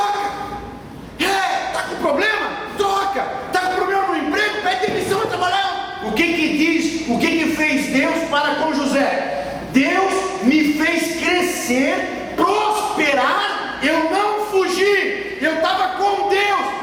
Está com problema? Troca. Está com problema no emprego? Pede demissão e trabalhar. O que diz? O que fez Deus para com José? Deus me fez crescer, prosperar. Eu não fugi. Eu estava com Deus.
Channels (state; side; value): identical; both; correlation 1.00